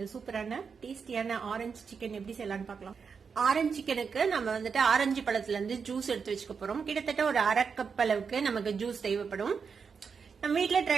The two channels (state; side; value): quieter; left; 5.9 dB